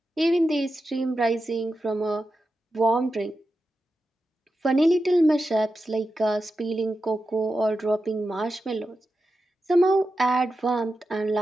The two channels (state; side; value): normal; both; correlation 0.90